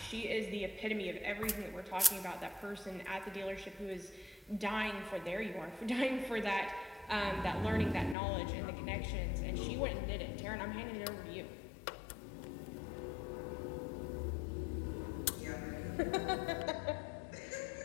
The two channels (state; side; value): drops out; right; at 8.2 s